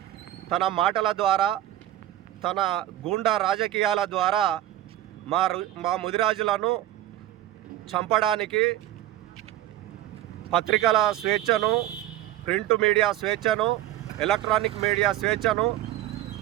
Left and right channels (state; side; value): quieter; left; 13.4 dB